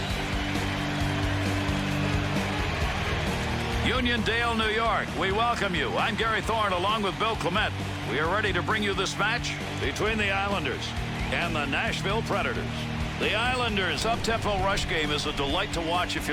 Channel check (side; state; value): both; identical; correlation 1.00